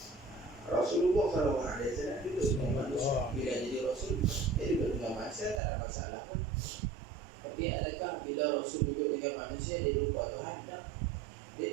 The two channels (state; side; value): drops out; left; at 5.6 s